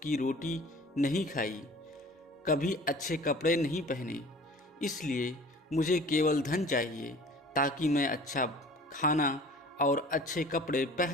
की रोटी नहीं खाई, कभी अच्छे कपड़े नहीं पहने, इसलिए मुझे केवल धन चाहिए ताकि मैं अच्छा खाना और अच्छे कपड़े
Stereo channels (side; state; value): both; normal; correlation 0.45